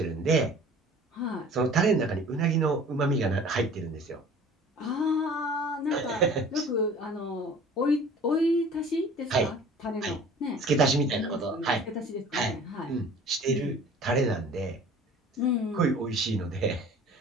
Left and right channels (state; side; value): normal; both; correlation 0.46